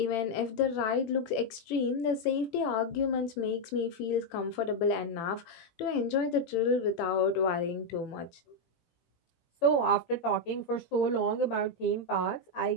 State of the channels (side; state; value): right; late; 18 ms